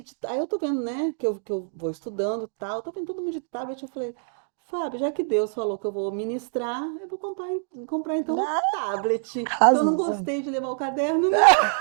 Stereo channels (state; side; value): silent; left; digital silence